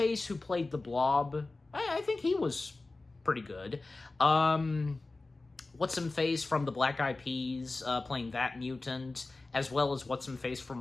who played the Blob, I think he was pretty good. What's-Him-Face from the Black Eyed Peas, playing that mutant, as well as What's-Him-Face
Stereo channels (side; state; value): right; quieter; 3.3 dB